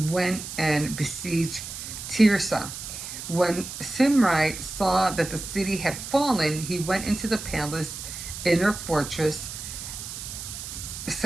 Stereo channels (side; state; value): right; noise; hiss, 9 dB below the sound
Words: went and besieged Tirzah. When Simri saw that the city had fallen, he went into the palace inner fortress,